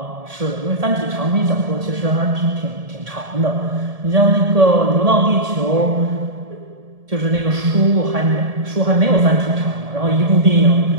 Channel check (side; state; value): left; late; 1.7 ms